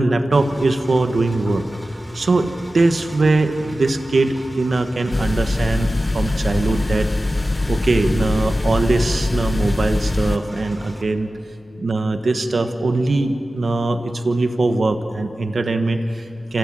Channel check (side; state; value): both; normal; correlation 0.95